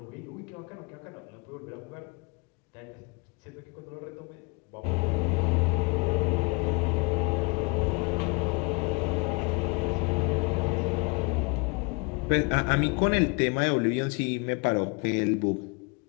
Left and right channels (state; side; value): quieter; right; 29.9 dB